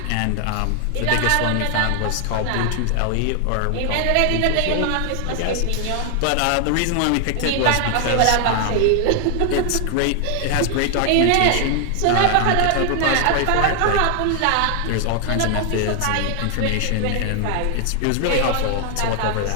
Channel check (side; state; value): both; different; correlation 0.00